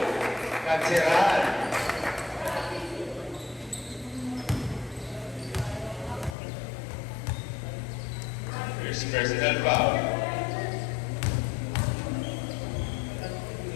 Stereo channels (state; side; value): drops out; right; at 6.4 s